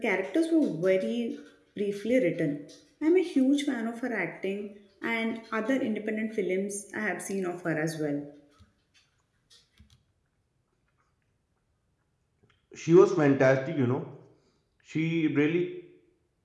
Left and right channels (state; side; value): identical; both; correlation 1.00